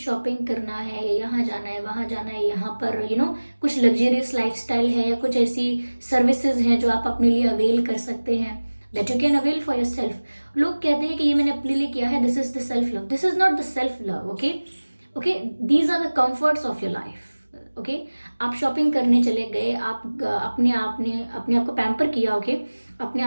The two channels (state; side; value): inverted; both; correlation -1.00